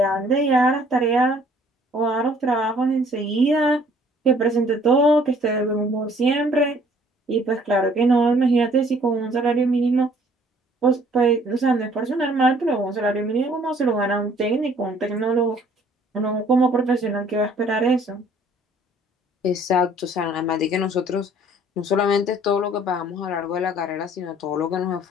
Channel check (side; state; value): both; normal; correlation 0.58